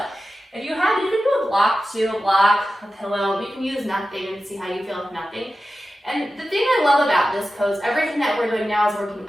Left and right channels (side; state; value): both; normal; correlation 0.93